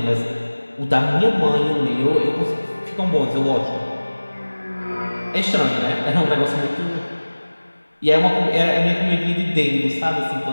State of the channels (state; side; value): inverted; both; correlation -1.00